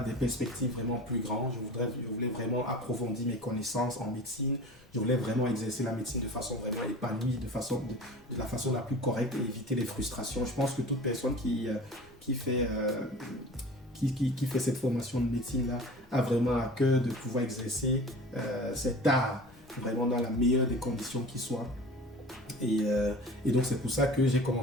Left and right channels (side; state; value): both; normal; correlation 0.39